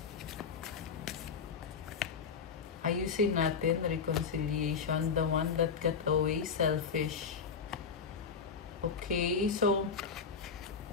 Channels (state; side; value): quieter; right; 5.9 dB